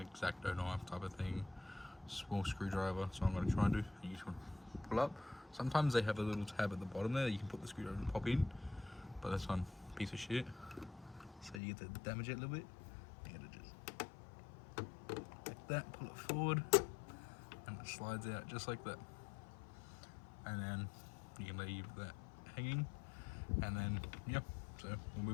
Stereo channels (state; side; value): drops out; right; at 11.6 s